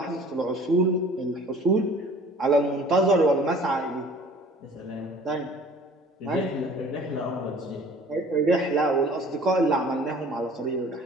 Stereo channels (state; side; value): normal; both; correlation 0.48